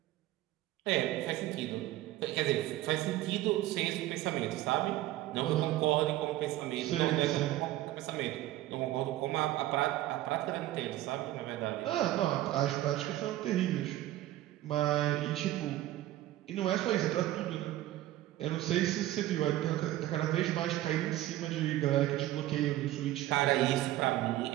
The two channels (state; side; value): quieter; left; 15.1 dB